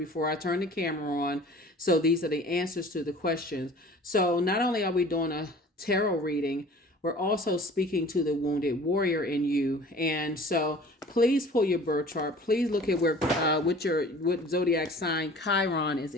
I turn the camera on. So these are the answers to the questions. So not only are we doing a tarot reading, we're also speaking to the wounded warrior in you. And so please pull your birth chart. Please look at what zodiac sign Chiron is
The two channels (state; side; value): normal; both; correlation 0.46